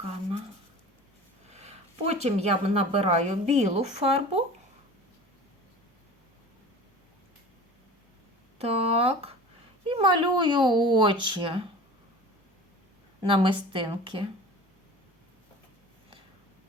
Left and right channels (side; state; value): both; normal; correlation 0.39